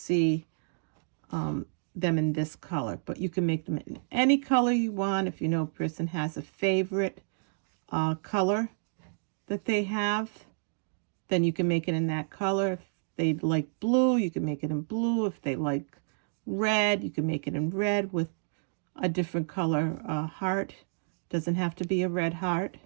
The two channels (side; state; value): left; silent; digital silence